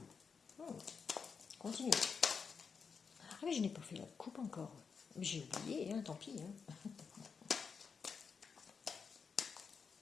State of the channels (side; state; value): right; quieter; 5.7 dB